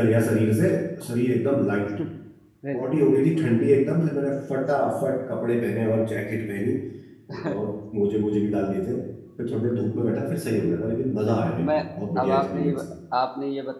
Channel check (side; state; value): both; identical; correlation 1.00